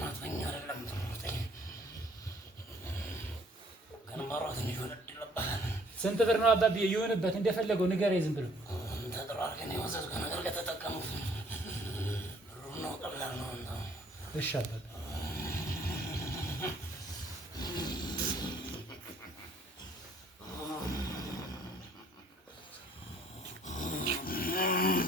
ስንት ብር ነው አባብዬ? ይሁንበት እንደፈለገው ንገረኝ ዝም ብሎ እሺ አባብዬ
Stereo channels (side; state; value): both; normal; correlation 0.60